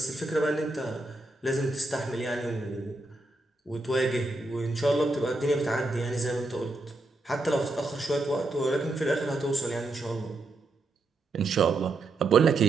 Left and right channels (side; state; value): left; quieter; 3.0 dB